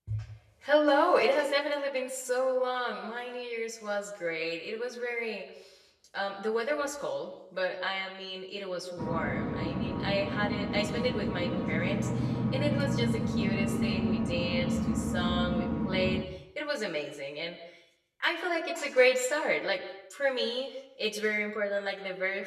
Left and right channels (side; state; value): both; identical; correlation 1.00